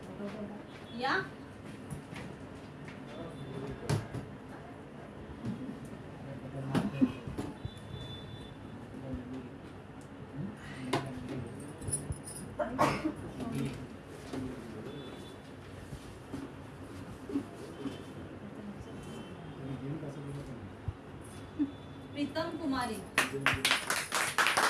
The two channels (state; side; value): identical; both; correlation 1.00